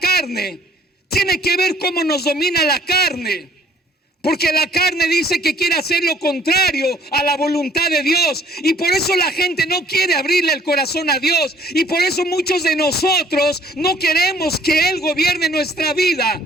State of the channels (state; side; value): normal; both; correlation 0.59